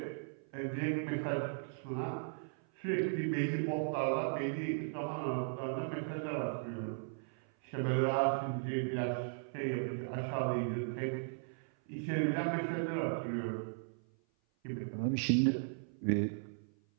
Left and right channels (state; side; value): silent; left; 53 dB below the other